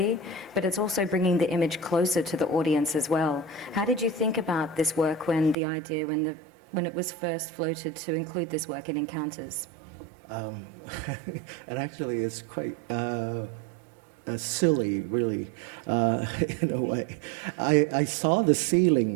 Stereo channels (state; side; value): drops out; left; at 5.6 s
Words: but it's also bringing the image closer to the audience as well. How did you think about this work when it was first floated to include this work in Encounters? And actually, it's quite silly, really, in a way. I saw the